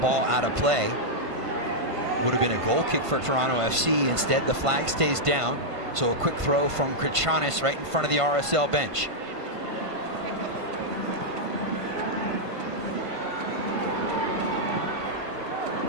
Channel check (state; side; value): late; left; 1.5 ms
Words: out of play. Would have been a goal kick for Toronto FC. Instead, the flag stays down. So a quick throw from Katranis right in front of the RSL bench.